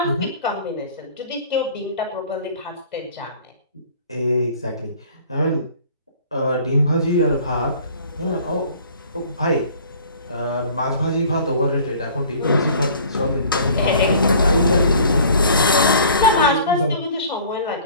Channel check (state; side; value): inverted; both; correlation -0.49